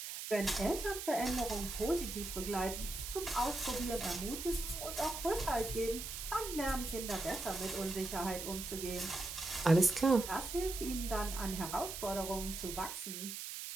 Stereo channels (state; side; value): noise; right; hiss, 7 dB below the sound